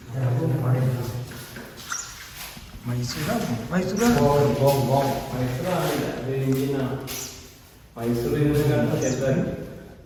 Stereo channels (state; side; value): identical; both; correlation 1.00